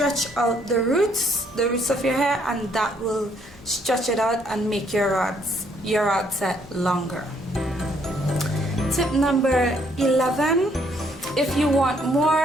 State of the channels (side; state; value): both; normal; correlation 0.68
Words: out the roots of your hair, and that will stretch it out and make your rod set longer. Tip number 11, if you want